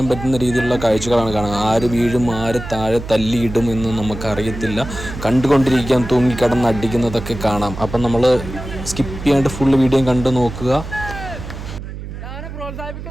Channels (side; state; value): right; noise; hum, 10 dB below the sound